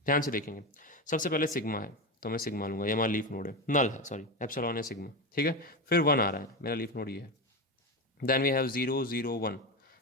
ध्यान से देखेंगे, सबसे पहले सिग्मा है तो मैं सिग्मा लूंगा, ये हमारा लीफ नोड है, नल है सॉरी, एप्सिलॉन है सिग्मा, ठीक है। फिर 1 आ रहा है, मेरा लीफ नोड ये है। देन वी हैव 001,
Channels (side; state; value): both; normal; correlation 0.17